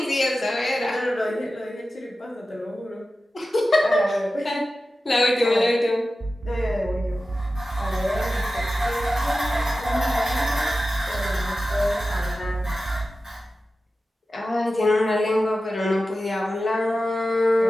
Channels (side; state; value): both; normal; correlation 0.94